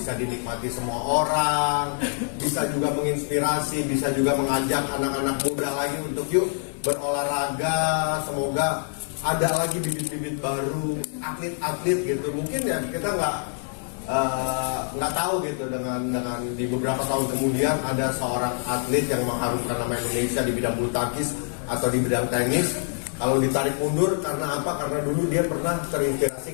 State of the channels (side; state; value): right; silent; 58 dB below the other